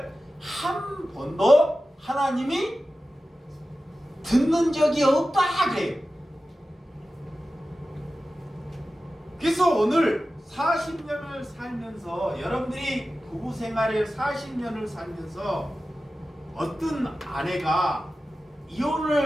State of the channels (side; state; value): both; normal; correlation 0.94